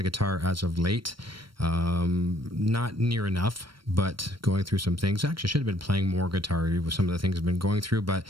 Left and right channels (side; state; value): left; late; 0.74 ms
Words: guitar as of late. Not near enough, but going through some things. Actually, I should have been playing more guitar with some of the things I've been going through,